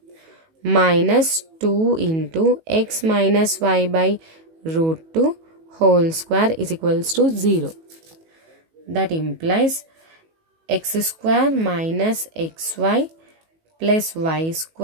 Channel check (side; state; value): left; late; 18 ms